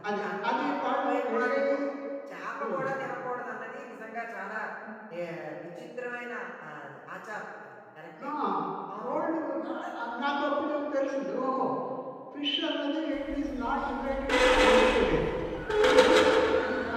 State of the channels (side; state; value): both; identical; correlation 1.00